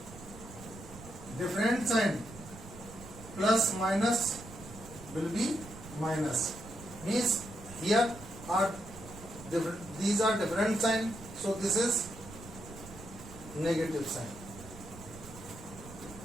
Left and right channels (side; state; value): right; noise; rumble, 15 dB below the sound